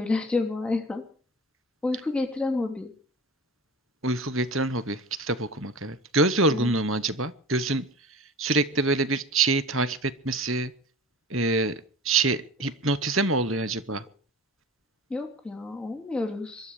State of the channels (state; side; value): normal; both; correlation 0.36